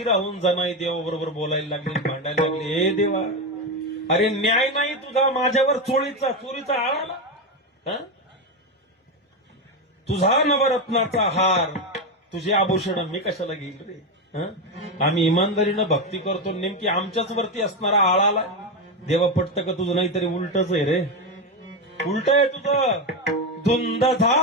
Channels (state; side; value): normal; both; correlation 0.11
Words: राहून जनाई देवाबरोबर बोलायला लागली, भांडायला लागली. हे देवा, अरे न्याय नाही तुझा माझ्यावर, चोरीचा आळाला. हं? तुझा नवरत्नाचा हार, तुझे आभूषण मी कशाला घेईल रे? हं? आम्ही इमानदारीनं भक्ती करतो, नेमकी आमच्याच वरती असणारा आळाला. देवा पटतं का तुझं? नाहीतरी उलटच आहे रे, उलट आहे तुझं. धुंद